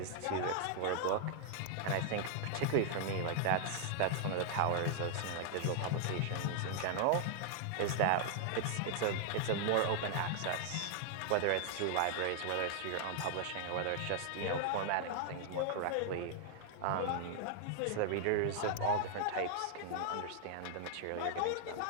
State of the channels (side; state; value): both; different; correlation 0.00